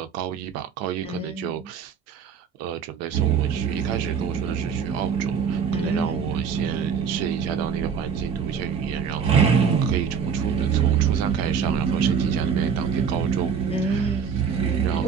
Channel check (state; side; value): quieter; left; 6.8 dB